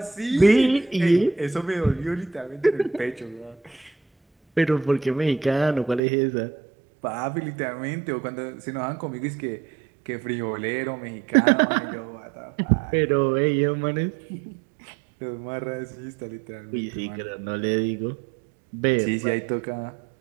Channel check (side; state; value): left; drops out; at 6.0 s